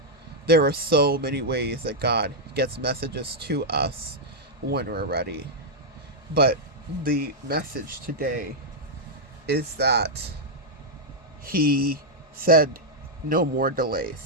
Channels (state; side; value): normal; both; correlation -0.04